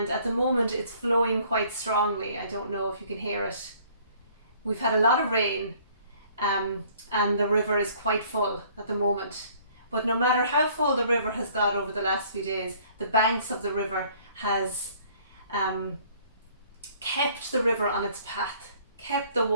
at the moment it's flowing quite strongly. I don't know if you can hear it. We've had a lot of rain, and the river is quite full at the moment. But no matter how full the river has got over the last few days, the banks of the river has kept the river on its path, kept the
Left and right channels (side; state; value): both; inverted; correlation -0.57